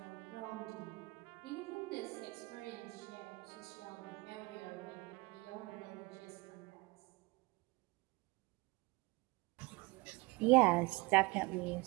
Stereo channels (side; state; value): left; quieter; 23.8 dB